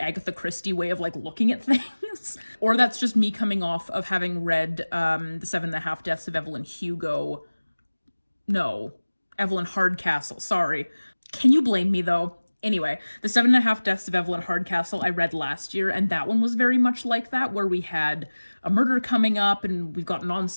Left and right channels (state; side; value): inverted; both; correlation -1.00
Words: Christie way of like looking at things. Or that's just me coming off of having read The 7.5 Deaths of Evelyn Hugo. No, Evelyn Hardcastle, sorry. Can you blame me though? Anyway, The 7.5 Deaths of Evelyn Hardcastle I read last year, and that one was very much like that, where we had a murder coming up and we've got an